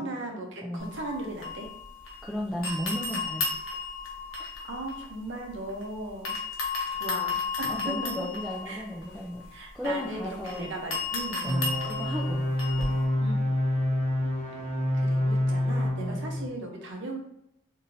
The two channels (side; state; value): both; normal; correlation 0.62